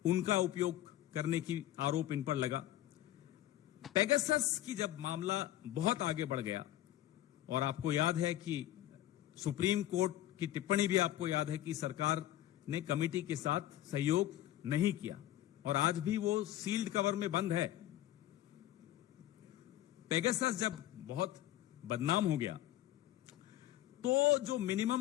उनका उपयोग करने की आरोप इन पर लगा। पेगासस की जब मामला बहुत आगे बढ़ गया, और आपको याद है कि सुप्रीम कोर्ट की टिप्पणी भी आपको याद है कि सरकार ने कमेटी के साथ सहयोग नहीं किया, और आज भी वो सील्ड कवर में बंद है। पेगासस जब बहुत बदनाम हो गया तो जो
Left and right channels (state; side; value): quieter; right; 14.0 dB